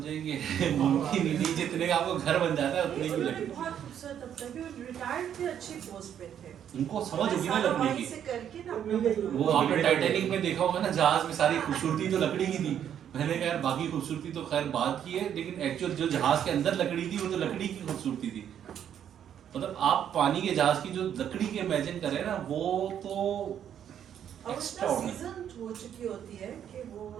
मुमकिन ही नहीं, जितने का आपको घर बन जाता है उतने की लकड़ी। बहुत खूबसूरत अब तक भी रिटायर्ड थे, अच्छी पोस्ट पे थे। उनको समझ होगी ना लकड़ी की। से करके ना अपना वो आपने टाइटैनिक में देखा होगा ना, जहाज में सारी खूबसूरती तो लकड़ी की थी। मैंने कहा यार बाकी खूबसूरती तो खैर बात की है, लेकिन एक्चुअल जो जहाज के अंदर लकड़ी थी वो तो लकड़ी की खूबसूरती थी। मतलब आप पानी के जहाज की जो लकड़ी की इमेजिन करें ना, वो तो और सीजन हो चुकी होती है कि वो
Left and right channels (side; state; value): left; quieter; 9.4 dB